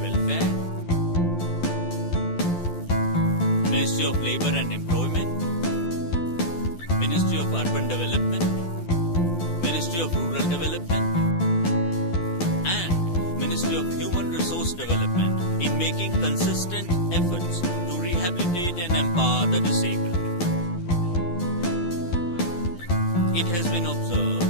Ministry of Labour and Employment, Ministry of Urban Development, Ministry of Rural Development, and Ministry of Human Resource Development in making consistent efforts to rehabilitate and empower the disabled. It has been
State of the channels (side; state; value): right; late; 11 ms